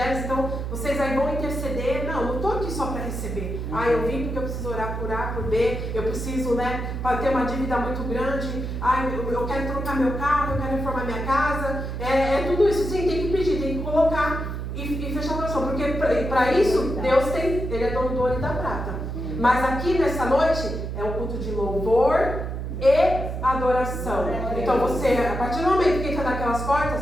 Então, vocês aí vão interceder. Não estou aqui só para receber. Eu vim porque eu preciso orar por A, por B. Eu preciso, né, para ter uma dívida muito grande. Eu quero trocar meu carro, eu quero reformar minha casa. É tudo isso, sim, tem que pedir, tem que colocar. E fechar o coração, porque para isso Deus tem, Ele é dono do ouro e da prata. Mas aqui nessa noite é um culto de louvor e adoração. Então você, a partir do momento que entra naquelas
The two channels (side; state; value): right; noise; hum, 4 dB below the sound